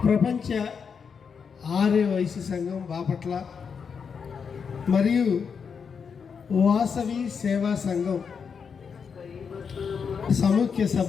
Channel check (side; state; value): right; quieter; 6.2 dB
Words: ప్రపంచ ఆర్య వైశ్య సంఘం బాపట్ల మరియు వాసవి సేవా సంఘం సముఖ్య